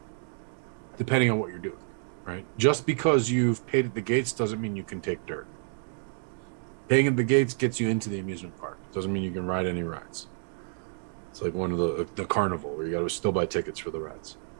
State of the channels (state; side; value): silent; left; 59 dB below the other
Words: depending on what you're doing, right? Just because you've paid at the gates doesn't mean you can take dirt. Paying at the gates gets you into the amusement park. Doesn't mean you can ride any rides. It's like one of the carnival where you got to still buy tickets for the rides.